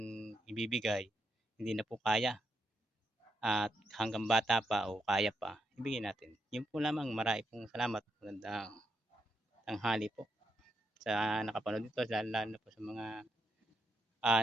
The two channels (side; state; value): both; normal; correlation 0.81